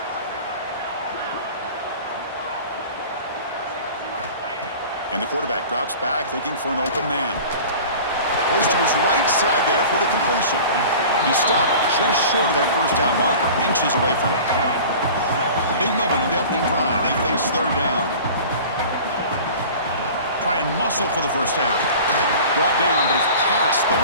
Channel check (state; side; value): inverted; both; correlation -0.40